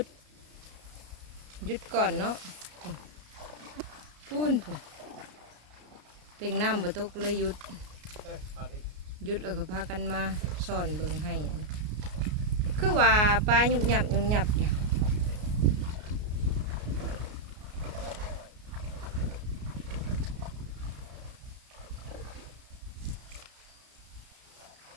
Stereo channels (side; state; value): left; late; 33 ms